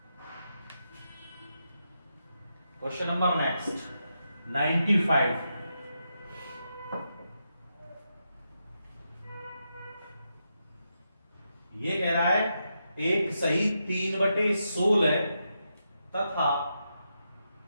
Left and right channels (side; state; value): both; inverted; correlation -0.85